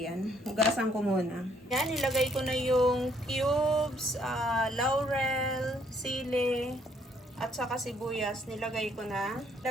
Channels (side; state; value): both; normal; correlation 0.67